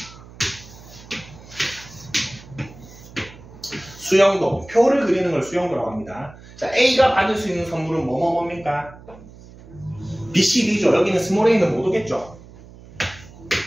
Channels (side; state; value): right; noise; hum, 20 dB below the sound